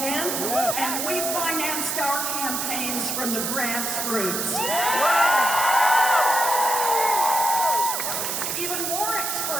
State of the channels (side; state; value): right; noise; hiss, 1 dB below the sound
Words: and we financed our campaigns from the grassroots. Even more